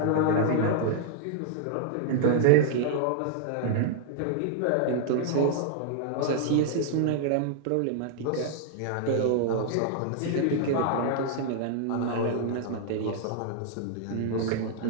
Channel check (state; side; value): different; both; correlation -0.01